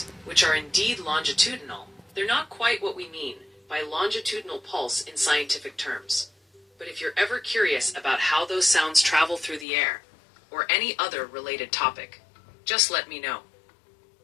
which are indeed longitudinal, they're not quite what we mean by longitudinal pulse in scientific terms. But if you're ever curious about how those sounds travel through the air, or any other related topic, just let me know.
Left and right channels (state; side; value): drops out; right; at 9.7 s